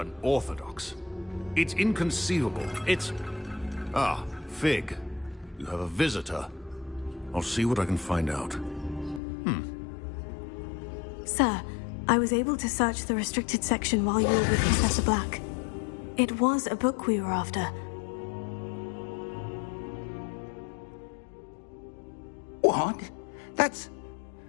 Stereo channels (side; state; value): right; drops out; at 9.2 s